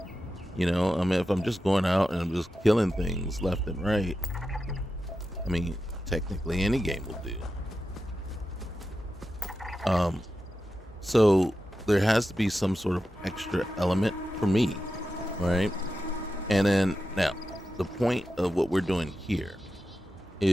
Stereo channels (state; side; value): normal; both; correlation 0.91